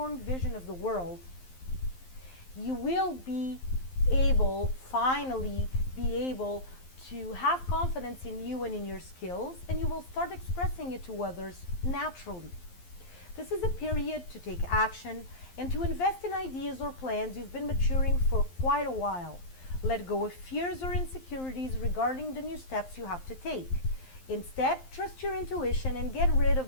vision of the world. You will finally be able to have confidence in you and in your skills, and you will start expressing it to others naturally. This is a period to take action and to invest in ideas or plans you've been maturing for quite a while. Let go of fears or insecurities regarding the new steps you have to take. Instead, trust your intuition and get rid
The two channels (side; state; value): right; late; 11 ms